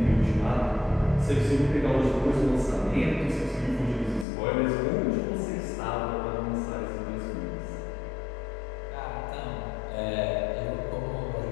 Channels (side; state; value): right; drops out; at 4.2 s